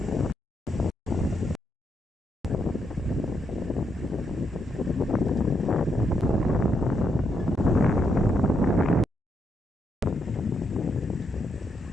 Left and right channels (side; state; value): both; normal; correlation 0.79